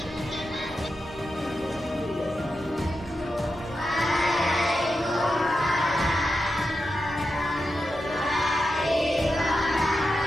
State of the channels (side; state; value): right; noise; hum, 24 dB below the sound